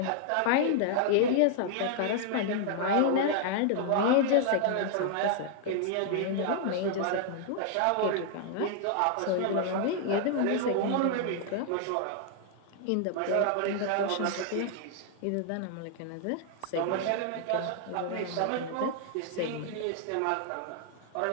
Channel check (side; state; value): both; different; correlation 0.00